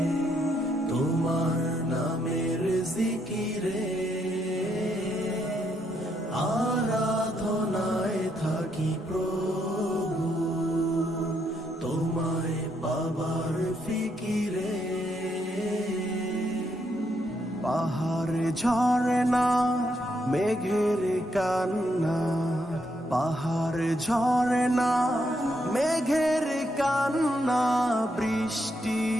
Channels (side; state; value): both; normal; correlation 0.77